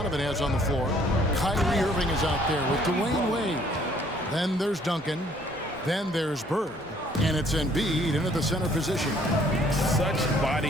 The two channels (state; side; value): normal; both; correlation 0.61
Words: has on the floor. Kyrie Irving is out there with Dwayne Wade. Then there's Duncan. Then there's Bird. And it's Embiid into the center position. Such